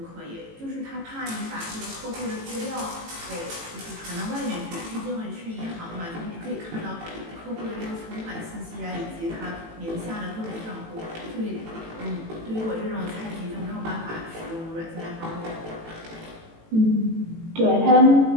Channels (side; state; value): left; late; 18 ms